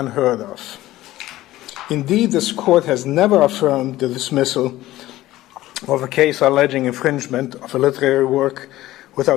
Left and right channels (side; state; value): right; quieter; 15.9 dB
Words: of. Indeed, this court has never affirmed the dismissal of a case alleging infringement of a literary work